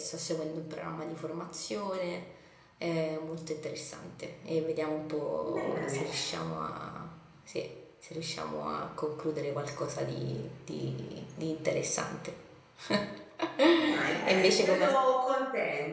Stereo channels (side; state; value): both; identical; correlation 1.00